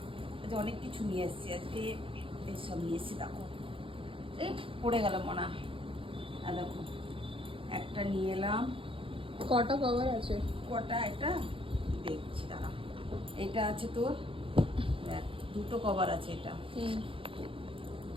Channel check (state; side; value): late; left; 0.25 ms